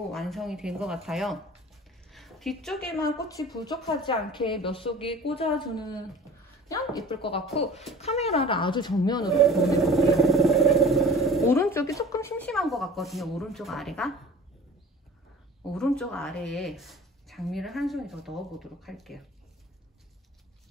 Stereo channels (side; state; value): both; normal; correlation 0.44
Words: 완성이 된 것 같아요. 뒤쪽에만 꽃이 부족하지 않게 몇 속이 꽂아주는 예쁠 것 같고 카메라를 아주 정면으로 보여드릴게요. 오른쪽이 조금 심심한 것 같거든요. 오른쪽 아래에 장미를 한 송이 더 넣어보도록 할게요.